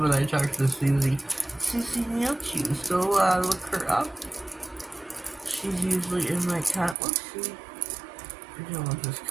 I talk to Susie. Susie Neilchew, so look her up. She's usually in my cat. Let's see. I don't want this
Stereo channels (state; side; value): drops out; left; at 7.0 s